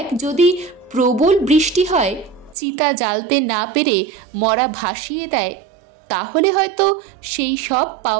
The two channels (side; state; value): left; drops out; at 2.6 s